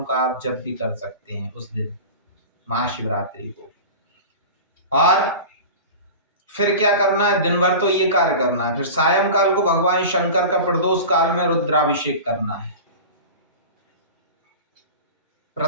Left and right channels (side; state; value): both; inverted; correlation -0.32